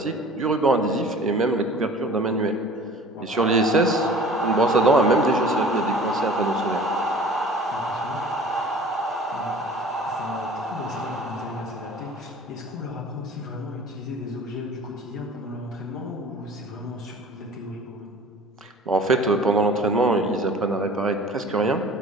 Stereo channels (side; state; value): both; normal; correlation 0.45